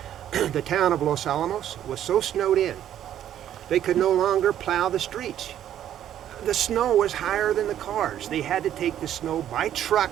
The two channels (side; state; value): left; quieter; 11.0 dB